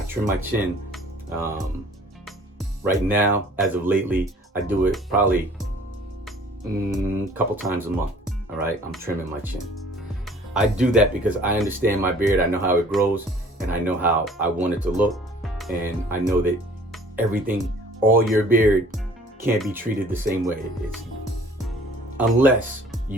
chin. Right now, as of lately, I do it probably a couple times a month, all right? I'm trimming my chin. I do that because I understand my beard. I know how it grows, and I know how I want it to look. And I know that all your beard can't be treated the same way. Unless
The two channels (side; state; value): both; normal; correlation 0.52